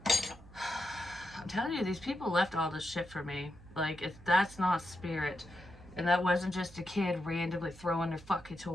I'm telling you, these people left all this shit for me. Like, that's not spirit. And that wasn't just a kid randomly throwing their fucking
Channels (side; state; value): right; noise; hum, 20 dB below the sound